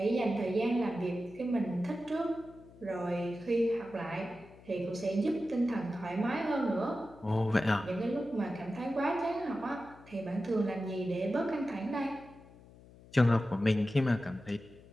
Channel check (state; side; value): noise; left; hum, 22 dB below the sound